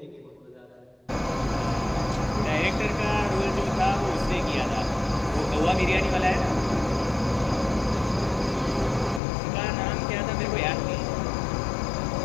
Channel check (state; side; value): drops out; right; at 9.2 s